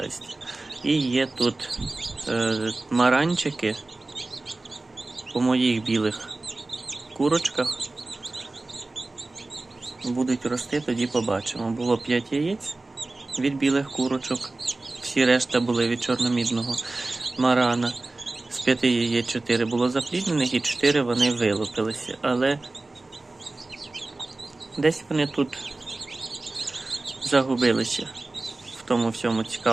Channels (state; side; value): quieter; left; 3.1 dB